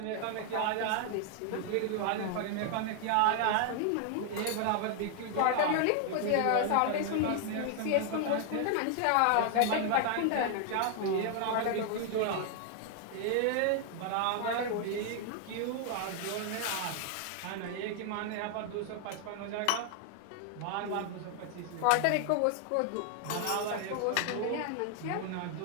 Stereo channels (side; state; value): both; different; correlation 0.00